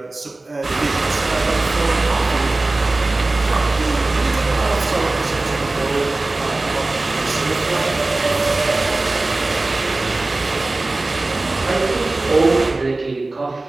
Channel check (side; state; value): left; quieter; 3.1 dB